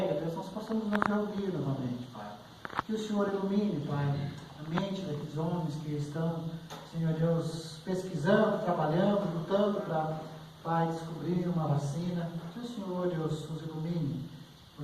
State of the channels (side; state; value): both; identical; correlation 1.00